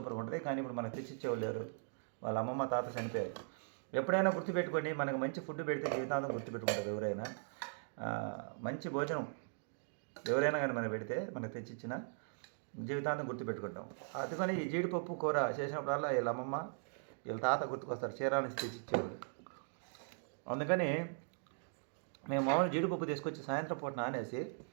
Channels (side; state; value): left; silent; digital silence